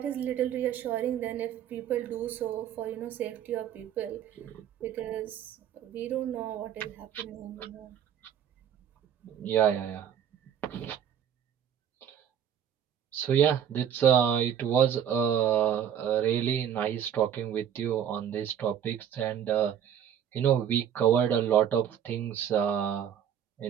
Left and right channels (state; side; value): quieter; left; 9.2 dB